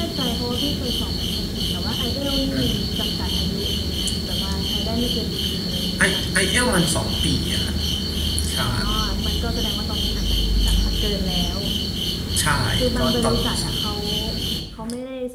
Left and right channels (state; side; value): identical; both; correlation 1.00